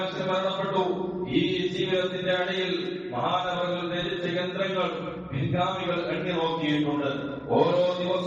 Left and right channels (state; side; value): identical; both; correlation 1.00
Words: മരണപ്പെട്ടു. ഈ ജീവിതത്തിന്റെ ഇടയിൽ മഹാനവകൾ ധരിച്ച യന്ത്രങ്ങൾ പിൻഗാമികൾ എണ്ണി നോക്കിയിട്ടുണ്ട്. ഓരോ